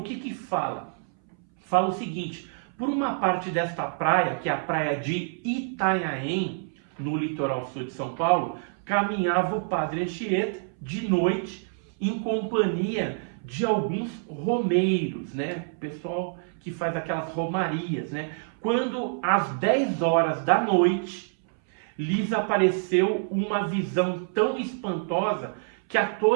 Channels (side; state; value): left; silent; 60 dB below the other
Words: que fala? Fala o seguinte: por uma parte desta praia, que é a praia de Itanhaém, no litoral sul de São Paulo, caminhava o padre Anchieta de noite em companhia de alguns romeiros, né? Pessoal que faz aquelas romarias, né? Quando às 10 horas da noite lhes apareceu uma visão tão espantosa que a